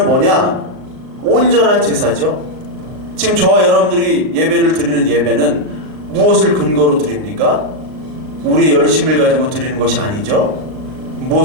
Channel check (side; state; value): left; late; 39 ms